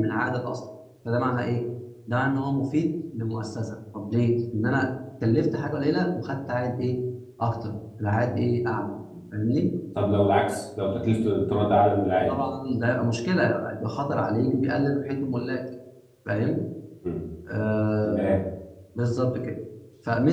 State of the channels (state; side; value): identical; both; correlation 1.00